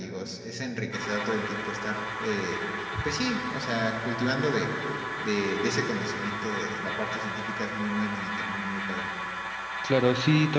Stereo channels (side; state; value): both; identical; correlation 1.00